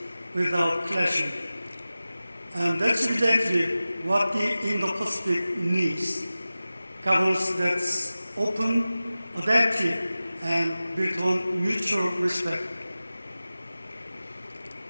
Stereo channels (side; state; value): both; inverted; correlation -0.96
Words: without clashing. And that's exactly what the Indo-Pacific needs. Governance that's open, adaptive, and built on mutual respect.